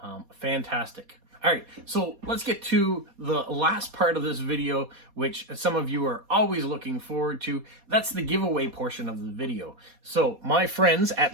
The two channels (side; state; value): left; late; 4.2 ms